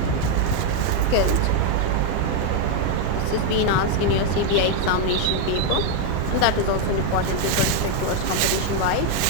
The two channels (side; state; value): both; different; correlation 0.01